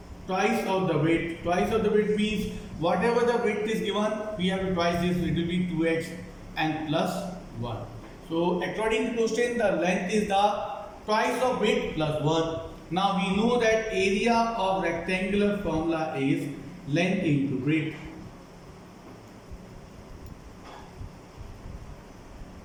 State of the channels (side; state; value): both; identical; correlation 1.00